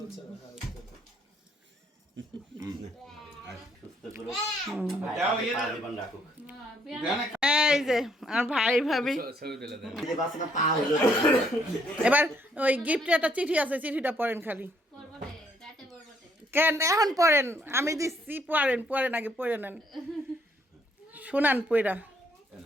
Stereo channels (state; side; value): normal; both; correlation 0.69